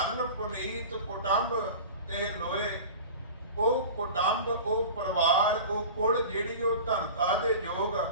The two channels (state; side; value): inverted; both; correlation -0.36